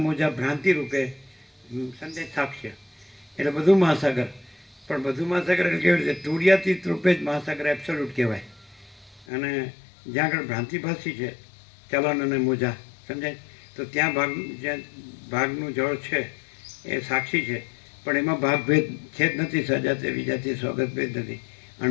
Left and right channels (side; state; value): right; drops out; at 9.2 s